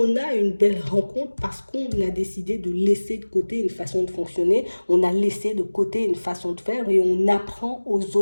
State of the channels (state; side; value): inverted; both; correlation -1.00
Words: a une belle rencontre parce qu'on a décidé de laisser de côté une façon de fonctionner. On a laissé de côté une façon de faire et on apprend aux